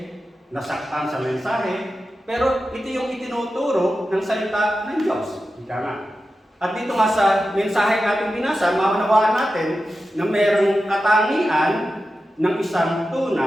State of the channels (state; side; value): normal; both; correlation 0.92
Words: nasaktan sa mensahe. Pero ito yung itinuturo ng salita ng Diyos. Ika nga. At dito nga sa mensahe natin binasa, maunawaan natin na mayroong katangian ng isang